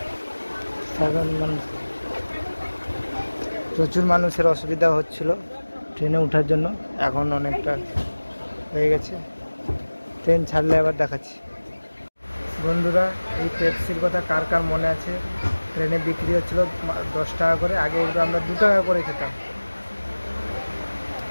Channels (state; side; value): inverted; both; correlation -1.00